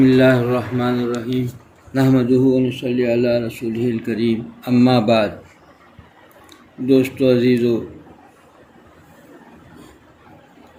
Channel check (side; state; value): both; identical; correlation 1.00